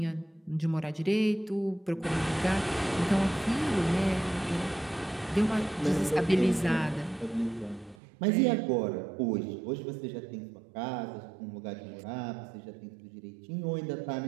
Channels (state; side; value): drops out; left; at 8.0 s